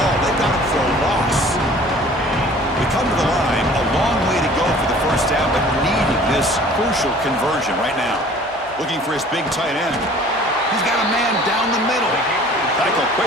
They got him for a loss. We come to the line. A long way to go for the first down, but needing this crucial conversion right now. Looking for his big tight end. He's got a man down the middle. Tackle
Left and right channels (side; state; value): both; normal; correlation 0.49